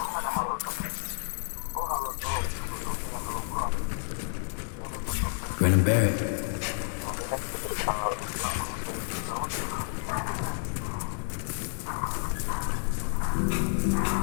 Grin and bear it.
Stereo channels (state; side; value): silent; right; 58 dB below the other